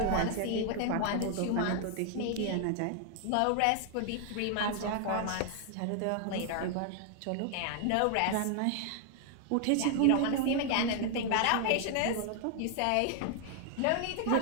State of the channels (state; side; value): different; both; correlation 0.00